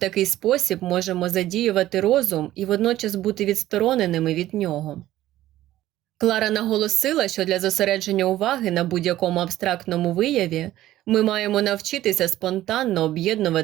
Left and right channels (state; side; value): quieter; left; 14.4 dB